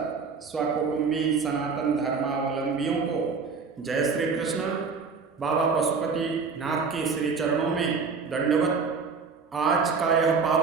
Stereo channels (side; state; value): left; quieter; 5.1 dB